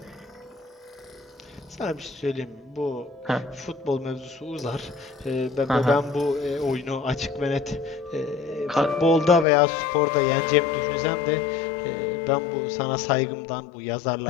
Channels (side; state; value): right; drops out; at 9.5 s